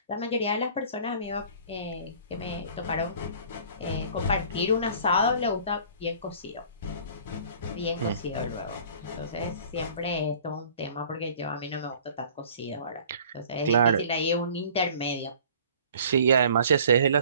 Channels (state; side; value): inverted; both; correlation -0.50